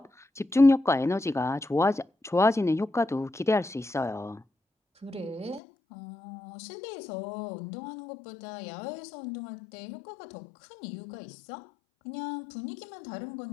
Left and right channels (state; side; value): drops out; right; at 5.6 s